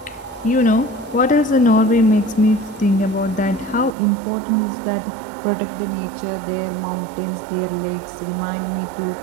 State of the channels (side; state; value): left; drops out; at 4.0 s